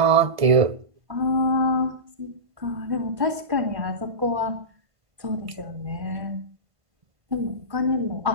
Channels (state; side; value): late; left; 1.5 ms